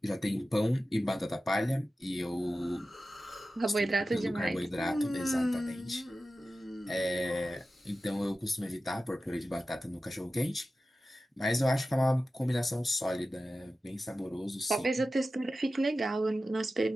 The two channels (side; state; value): both; normal; correlation 0.94